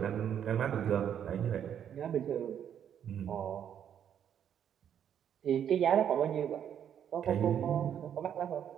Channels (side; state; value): left; quieter; 9.1 dB